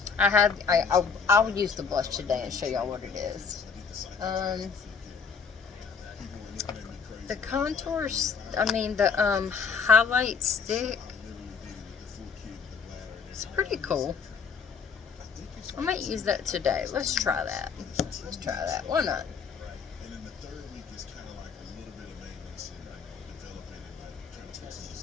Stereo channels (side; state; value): right; quieter; 5.8 dB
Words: I'll use the blush today and show y'all what it is. The contours, I mean the highlight stick, it's pretty cool. I might use that today. Let's try that. Let's try that. Why not?